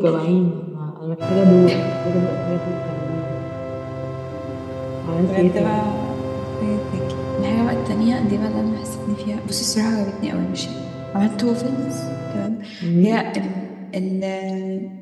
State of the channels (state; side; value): identical; both; correlation 1.00